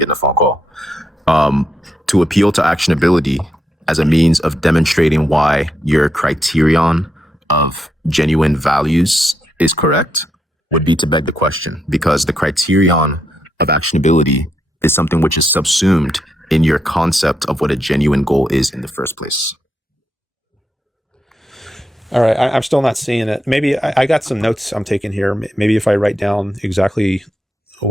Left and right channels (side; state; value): both; normal; correlation 0.81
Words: a phone call. To appeal to actionability as a means of demonstrating why your criterion of genuine values is correct would be to beg the question, because the criterion of actionability is something which is subsumed in your concept of what a genuine goal is in the first place. All right, I'm still not seeing it. Maybe I got some notes I'm taking here. Maybe if I write down exactly